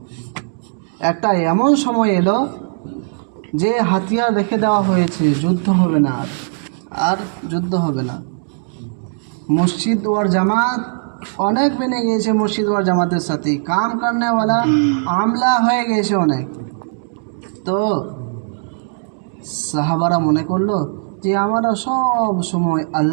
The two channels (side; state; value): left; silent; digital silence